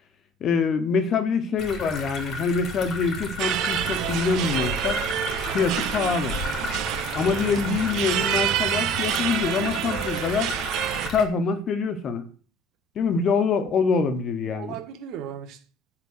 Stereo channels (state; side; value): normal; both; correlation 0.49